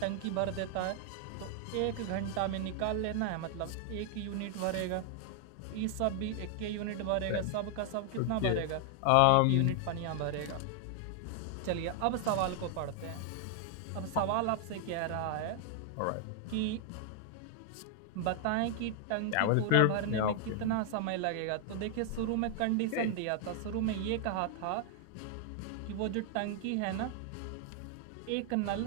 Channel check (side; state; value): both; different; correlation 0.00